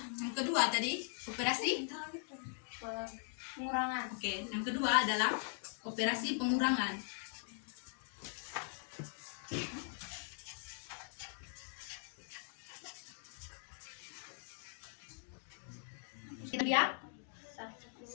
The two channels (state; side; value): silent; right; 51 dB below the other